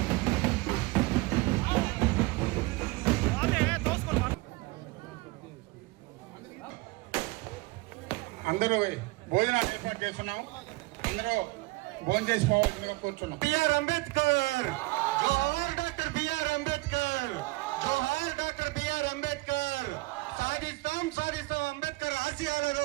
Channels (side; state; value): left; quieter; 22.1 dB